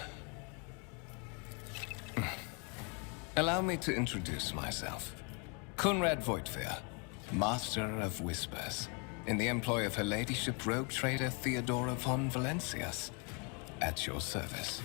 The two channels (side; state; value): right; quieter; 35.0 dB